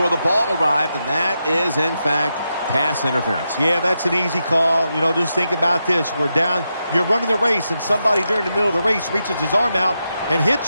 the ball arrived, and that is, in fact, pass interference. Yeah, that's an easy call. You know, just think about this. We're down. You're running the race, and somebody during the middle of the race reaches his arm out and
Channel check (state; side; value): inverted; both; correlation -0.86